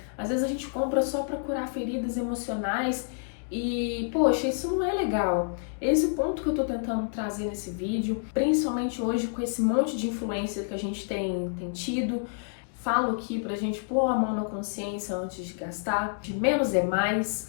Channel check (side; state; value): right; silent; digital silence